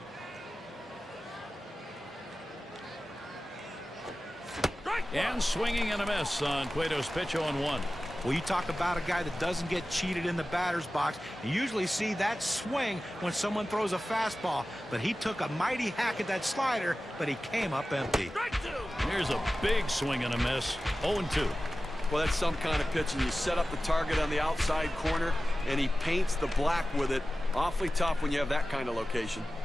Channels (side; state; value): both; normal; correlation 0.95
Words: And swinging and a miss on Cueto's pitch. 0-1. Well, you talk about a guy that doesn't get cheated in the batter's box. You usually see that swing when someone throws a fastball. But he took a mighty hack at that slider, but he came up empty. Here's a big swing and a miss. 0-2. Well, that's some kind of pitch, and you set up the target on the outside corner, and he paints the black with it. Awfully tough when you have that kind of location.